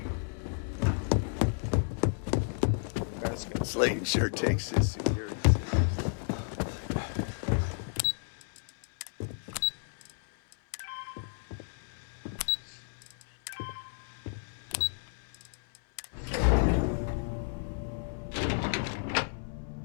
Slayton sure takes his security.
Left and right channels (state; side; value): silent; right; 56 dB below the other